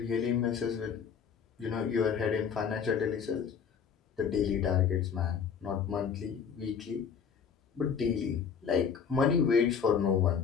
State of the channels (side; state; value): right; quieter; 6.9 dB